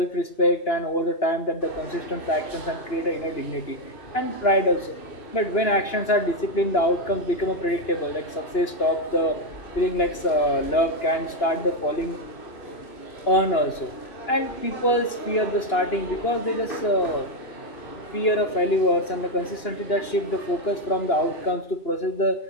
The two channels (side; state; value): right; late; 2.9 ms